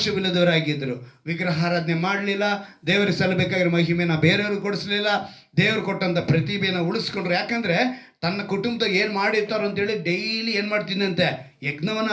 ವಿಗ್ರಹಾರಾಧನೆ ಮಾಡಲಿಲ್ಲ, ದೇವರಿಗೆ ಸಲ್ಲಬೇಕಾಗಿರೋ ಮಹಿಮೆನ ಬೇರೆಯವ್ರಿಗೆ ಕೊಡಿಸ್ಲಿಲ್ಲ, ದೇವರು ಕೊಟ್ಟಂಥ ಪ್ರತಿಭೆನ ಉಳಿಸ್ಕೊಂಡ್ರು. ಯಾಕಂದರೆ ತನ್ನ ಕುಟುಂಬದಾಗ ಏನು ಮಾಡಿರ್ತಾರೋ ಅಂತೇಳಿ ಡೈಲಿ ಏನು ಮಾಡ್ತಿದ್ದಂತೆ? ಯಜ್ಞವನ್ನು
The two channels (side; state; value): both; identical; correlation 1.00